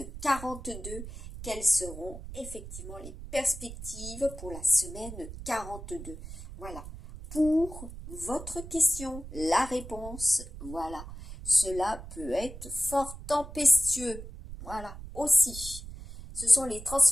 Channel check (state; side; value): noise; right; rumble, 12 dB below the sound